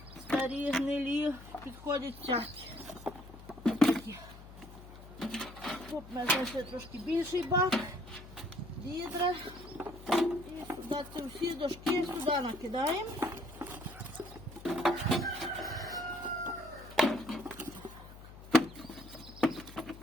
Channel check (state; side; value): noise; left; hum, 16 dB below the sound